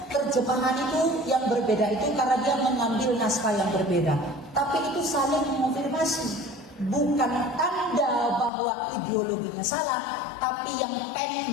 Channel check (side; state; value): right; drops out; at 8.5 s